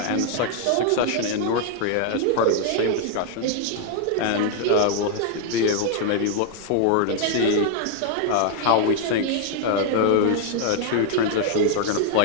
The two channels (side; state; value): both; different; correlation -0.01